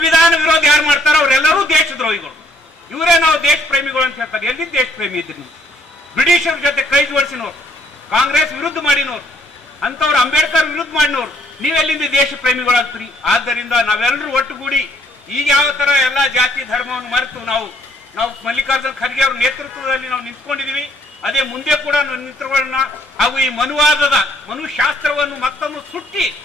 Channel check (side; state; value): both; normal; correlation 0.65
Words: ವಿರೋಧ ಯಾರು ಮಾಡ್ತಾರ ಅವರೆಲ್ಲರೂ ದೇಶ ದ್ರೋಹಿಗಳು. ಇವರೇ ನಾವು ದೇಶ ಪ್ರೇಮಿಗಳು ಅಂತ ಹೇಳ್ತಾರೆ. ಎಲ್ಲಿ ದೇಶ ಪ್ರೇಮಿ ಇದ್ರಿ ನೀವು? ಬ್ರಿಟಿಷರ ಜೊತೆ ಕೈ ಜೋಡಿಸಿನವ್ರು, ಕಾಂಗ್ರೆಸ್ ವಿರುದ್ಧ ಮಾಡಿನವ್ರು, ಅಂತವ್ರು ಅಂಬೇಡ್ಕರ್ ವಿರುದ್ಧ ಮಾಡಿನವ್ರು, ನೀವೆಲ್ಲಿಂದ ದೇಶ ಪ್ರೇಮಿಗಳಾಗ್ತೀರಿ? ಆದ್ದರಿಂದ ನಾವೆಲ್ಲರೂ ಒಟ್ಟುಗೂಡಿ ಈಗ ಯಾವ ತರ ಎಲ್ಲಾ ಜಾತಿ ಧರ್ಮವನ್ನು ಮರೆತು ನಾವು ಮಲ್ಲಿಕಾರ್ಜುನ್ ಖರ್ಗೆ ಅವ್ರ ನೇತೃತ್ವದಲ್ಲಿ ನಾವು ನಿಂತ್ಕೊಂಡಿದೀವಿ. ಅದೇ ಮುಂದೆ ಕೂಡ ನಿಂತ್ಕೊಳ್ಳೋಣ. ಹಾಗೂ ಈ ಮನುವಾದದ ಮನುಶಾಸ್ತ್ರವನ್ನು ಮತ್ತೊಂದು ಸುಟ್ಟಿ